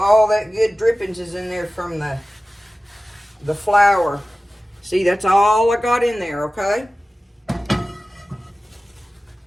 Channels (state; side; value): normal; both; correlation 0.96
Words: that good drippings is in there from the flour. See, that's all I got in there, okay?